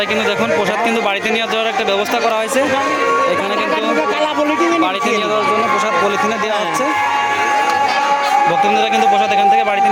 কিন্তু দেখুন প্রসাদ কিন্তু বাড়িতে নিয়ে যাওয়ার একটা ব্যবস্থা করা হয়েছে। এখানে কিন্তু বাড়িতে নিয়ে যাওয়ার জন্য প্রসাদ পলিথিনে দেওয়া হচ্ছে। ভক্তবৃন্দরা কিন্তু প্রসাদ এখান থেকে বাড়িতে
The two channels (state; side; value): identical; both; correlation 1.00